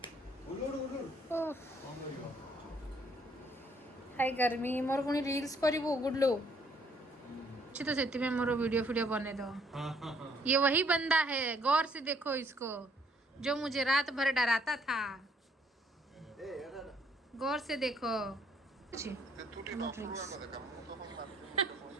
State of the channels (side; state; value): both; normal; correlation 0.66